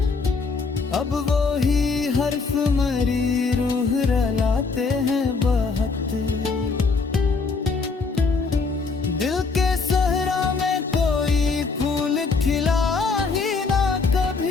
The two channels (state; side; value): quieter; right; 4.4 dB